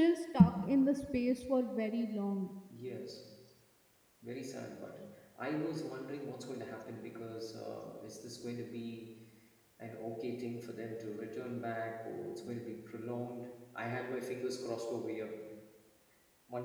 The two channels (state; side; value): identical; both; correlation 1.00